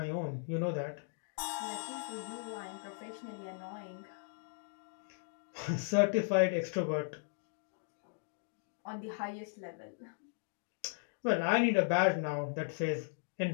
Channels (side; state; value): right; silent; digital silence